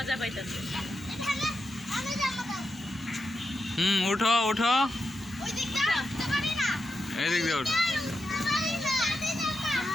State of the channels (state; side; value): normal; both; correlation 0.87